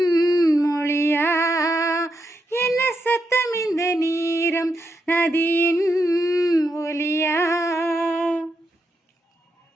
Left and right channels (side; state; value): both; normal; correlation 0.83